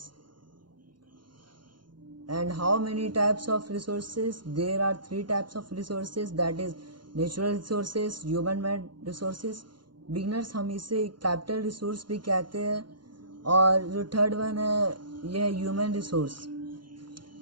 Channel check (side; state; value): left; late; 0.71 ms